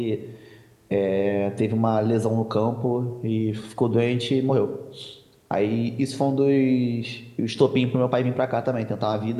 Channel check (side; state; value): both; identical; correlation 1.00